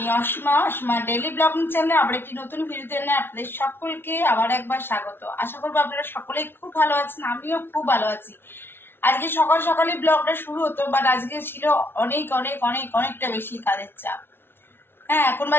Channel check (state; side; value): late; right; 0.11 ms